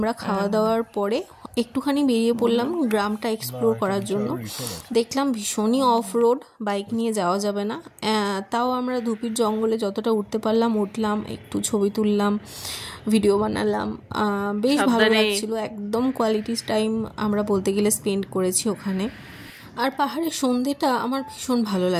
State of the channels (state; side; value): identical; both; correlation 1.00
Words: খাওয়া দাওয়ার পরে একটুখানি বেরিয়ে পড়লাম গ্রামটা এক্সপ্লোর করার জন্য। দেখলাম ভীষণই অফ রোড, বাইক নিয়ে যাওয়া যাবে না, তাও আমরা ধুপির জঙ্গলে যতটা উঠতে পারলাম উঠলাম, একটু ছবি তুললাম, ভিডিও বানালাম, বেশ ভালো লাগছিল। একদম কোয়ালিটি টাইম আমরা বলতে গেলে স্পেন্ড করেছি ওখানে। আর পাহাড়ের সন্ধ্যেটা আমার ভীষণ ভালো